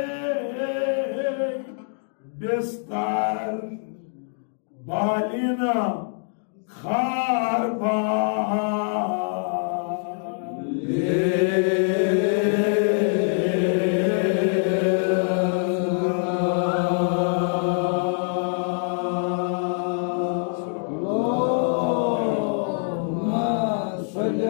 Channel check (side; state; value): right; silent; 62 dB below the other